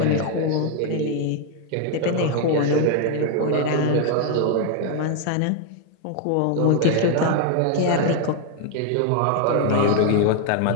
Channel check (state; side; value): different; both; correlation 0.01